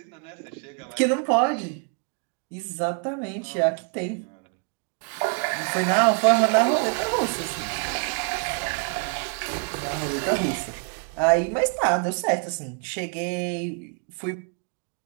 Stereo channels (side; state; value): left; quieter; 40.0 dB